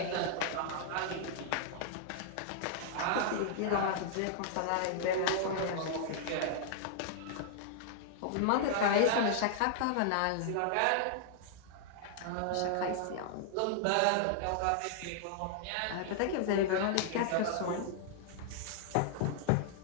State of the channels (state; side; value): different; both; correlation -0.01